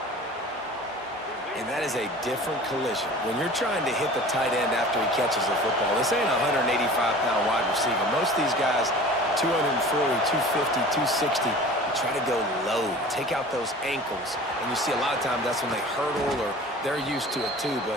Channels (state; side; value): normal; both; correlation 0.42